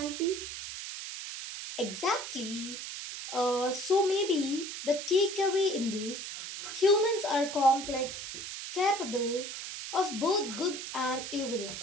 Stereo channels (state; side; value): noise; right; hiss, 8 dB below the sound